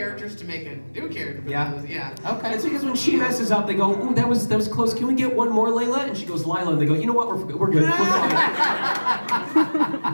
to make a new character. But Yeah. Yeah. Okay. It's because when she messes up, they go, "Ooh, that was close. Can we get one more, Layla?" And she goes, "Lila," and they go, "You know what? We're good. We're fine.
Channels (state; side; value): inverted; both; correlation -1.00